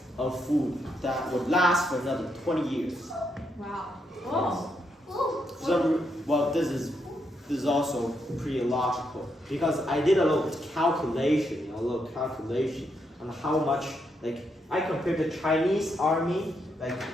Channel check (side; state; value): both; normal; correlation 0.79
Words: of food that would last for another 20 years. Wow. Oh. This is also pretty illogical because I did a little calculation, on how much, I compared the Chinese army,